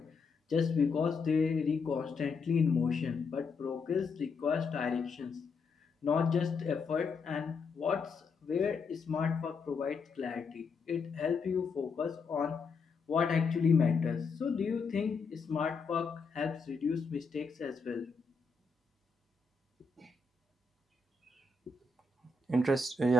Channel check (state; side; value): quieter; right; 4.7 dB